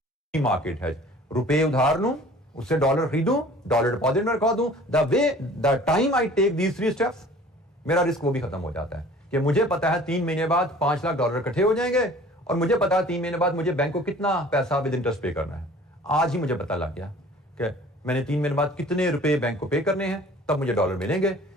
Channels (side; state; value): both; normal; correlation 0.48